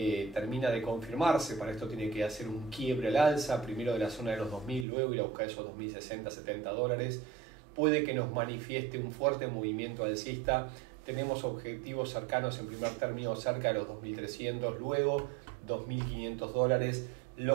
de confirmarse, para esto tiene que hacer un quiebre al alza, primero de la zona de los 2000, luego ir a buscar esos 2060, 70 dólares, puede que nos manifieste un fuerte movimiento alcista. Tenemos objetivos cercanos en primer término cerca de los 2300, luego 2500 dólares,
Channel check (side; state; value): left; drops out; at 4.9 s